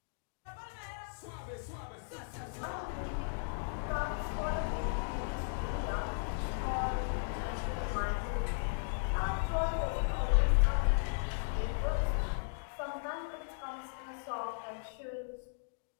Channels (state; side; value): silent; right; digital silence